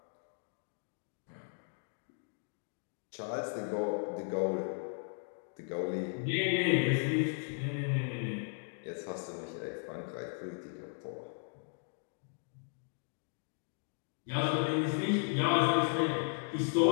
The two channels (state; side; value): silent; right; 54 dB below the other